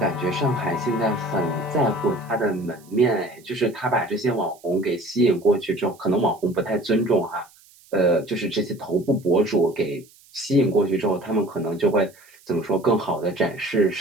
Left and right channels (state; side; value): noise; right; hiss, 27 dB below the sound